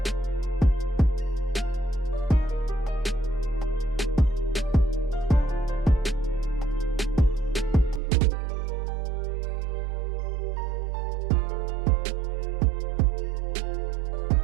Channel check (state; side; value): drops out; left; at 8.0 s